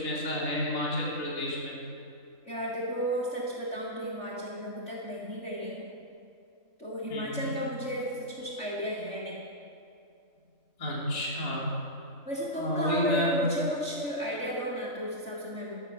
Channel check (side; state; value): right; late; 3.5 ms